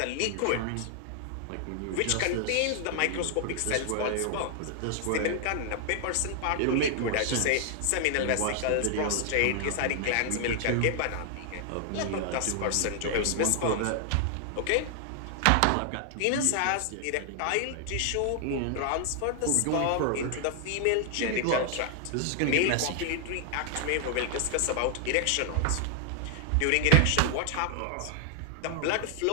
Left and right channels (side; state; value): both; different; correlation 0.00